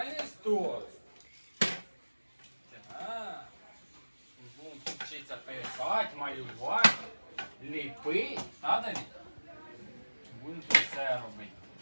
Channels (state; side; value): inverted; both; correlation -1.00